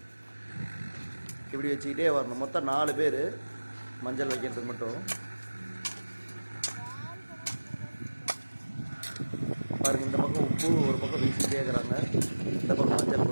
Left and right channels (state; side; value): inverted; both; correlation -1.00